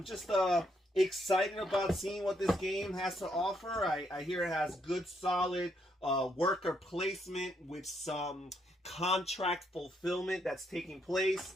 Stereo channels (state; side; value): normal; both; correlation 0.75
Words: just excited about seeing what this game has to offer. I hear it has good solid worker placement with some contract fulfillment that's taking